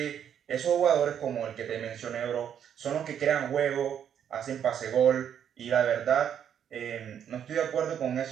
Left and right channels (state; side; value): quieter; left; 9.0 dB